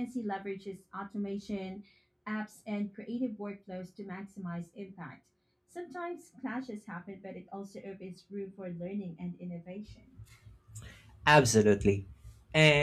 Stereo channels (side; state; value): both; identical; correlation 1.00